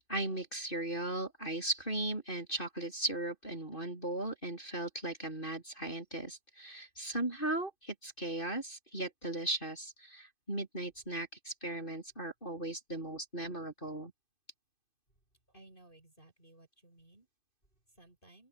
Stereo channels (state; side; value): late; right; 2.5 ms